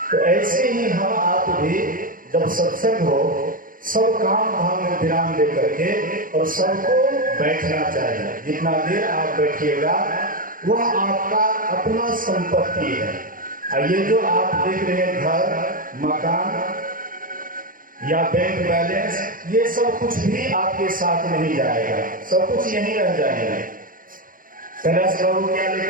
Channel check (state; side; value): late; left; 0.40 ms